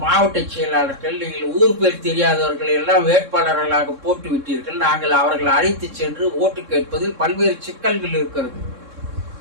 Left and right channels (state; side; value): late; left; 3.7 ms